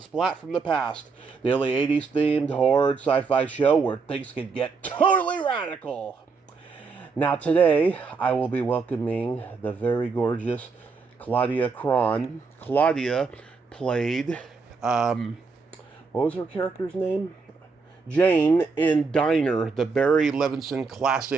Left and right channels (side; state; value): left; quieter; 4.7 dB